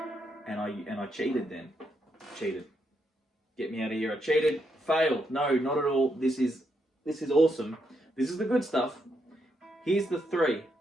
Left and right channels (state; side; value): normal; both; correlation 0.79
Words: and I cheated then. Cheated. Get me out of here. I cheated. Failed. No, not at all. This is awesome. This is the good stuff. Here's the 3.